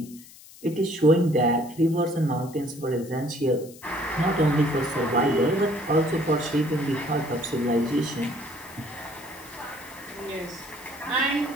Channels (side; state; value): left; noise; hiss, 20 dB below the sound